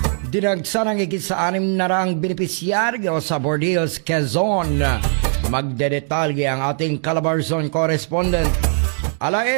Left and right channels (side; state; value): left; silent; digital silence